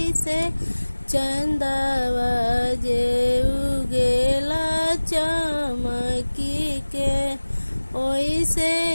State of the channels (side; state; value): both; inverted; correlation -1.00